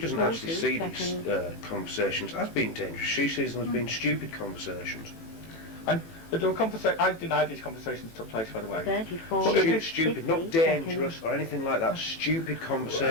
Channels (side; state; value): right; late; 18 ms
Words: doesn't actually 40 see these seconds. conversations as being dangerous. She sees them as being stupid conversations. And there were I deny these conversations took place, by the way. 34 Well, minutes, Stupid, 50 not dangerous seconds. or anything like that. Stupid We're